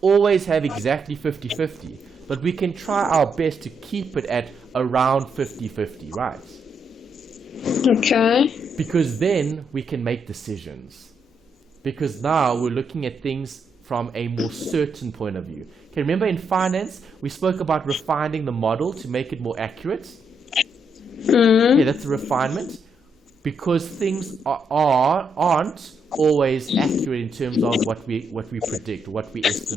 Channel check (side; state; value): both; normal; correlation 0.78